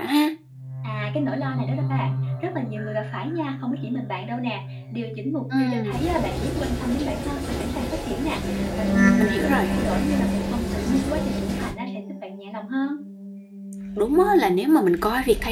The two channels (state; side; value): identical; both; correlation 1.00